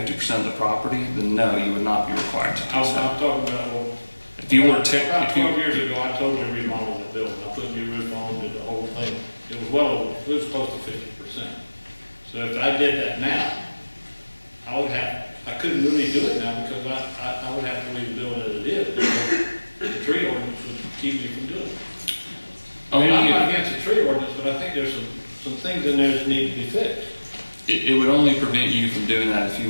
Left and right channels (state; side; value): inverted; both; correlation -1.00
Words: of the property, then no, you would not be required to do I'm so. talking about, well, If you were to, about if you, 12 years ago, I totally remodeled that building. I put new roof on, did the whole thing. It was it was close to 50%. So if I did that now, I couldn't really do it now because I would have to leave the building as it is. The tree ordinance would keep me from doing it. I mean, I'm not against the tree ordinance, but I think there's some things in there that need to be fixed. it would only prevent you from doing that if